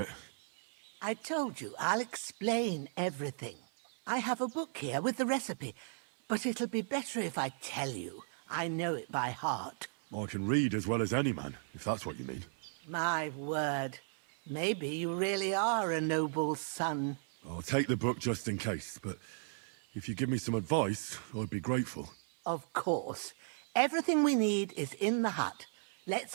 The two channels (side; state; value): left; silent; 54 dB below the other